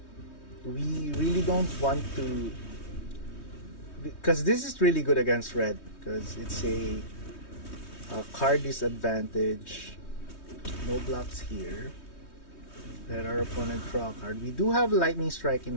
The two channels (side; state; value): right; late; 3.2 ms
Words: we really don't want to, because this is really good against red, because it's a card disadvantage. No blocks here. Let our opponent draw a card. We do have Lightning Strike